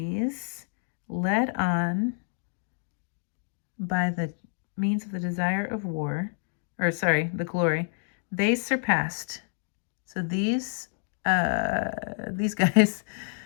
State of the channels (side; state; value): right; silent; digital silence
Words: led on by the means of the desire of war, the glory, they surpassed. So these guys